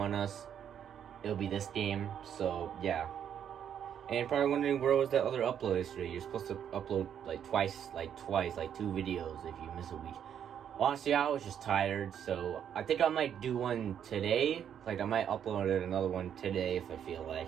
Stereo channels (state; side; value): quieter; left; 9.0 dB